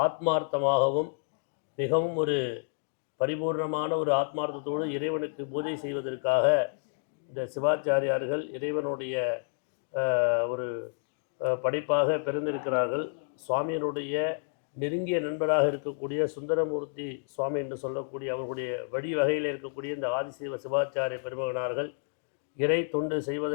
ஆத்மார்த்தமாகவும் மிகவும் ஒரு பரிபூர்ணமான ஒரு ஆத்மார்த்தத்தோடு இறைவனுக்கு பூஜை செய்வதற்காக இந்த சிவாச்சாரியார்கள் இறைவனுடைய ஒரு படைப்பாக பிறந்திருக்கிறார்கள். சுவாமியினுடைய நெருங்கிய நண்பராக இருக்கக்கூடிய சுந்தரமூர்த்தி சுவாமி என்று சொல்லக்கூடிய அவர்களுடைய வழி வகையில் இருக்கக்கூடிய இந்த ஆதிசிவ சிவாச்சாரிய பெருமகனார்கள் இறை தொண்டு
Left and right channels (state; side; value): silent; right; digital silence